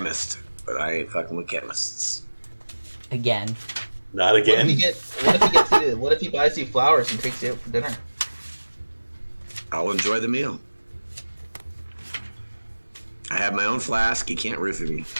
but I ain't fucking with chemists. Again. Not What if again. what if he buys you flowers and takes you out for dinner? I'll enjoy the meal. I have my own flask. You can't roofie me.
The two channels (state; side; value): inverted; both; correlation -1.00